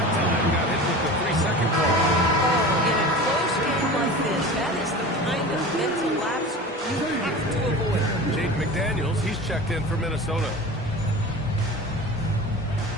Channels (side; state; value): both; normal; correlation 0.34